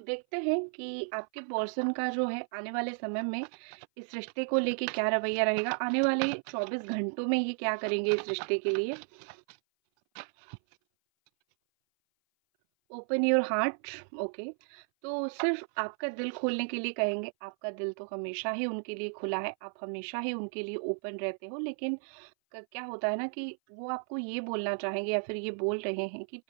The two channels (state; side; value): silent; left; 56 dB below the other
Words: हैं कि आपके पर्सन का जो है आने वाले समय में इस रिश्ते को लेके क्या रवैया रहेगा। आने वाले 24 घंटों में ये क्या करेंगे इस रिश्ते के लिए। Open your heart. ओके, तो सिर्फ आपका दिल खोलने के लिए कहेंगे। आपका दिल तो हमेशा ही उनके लिए खुला है, आप हमेशा ही उनके लिए ओपन रहते हो, लेकिन क्या होता है ना कि वो आपको ये बोलना चाहेंगे या फिर ये बोल रहे हैं कि